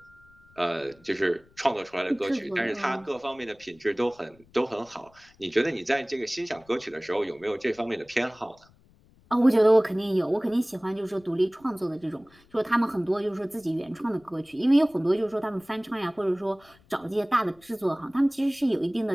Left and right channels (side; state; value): left; noise; rumble, 29 dB below the sound